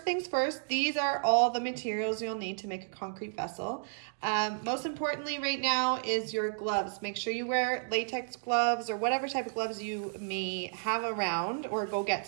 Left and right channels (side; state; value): left; silent; digital silence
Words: things first, these are all the materials you'll need to make a concrete vessel. Most importantly right now is your gloves. Make sure you wear latex gloves or whatever type of gloves you may have around, or go get